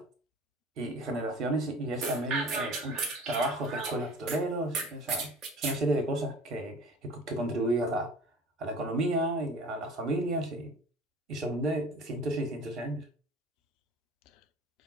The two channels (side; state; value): both; normal; correlation 0.43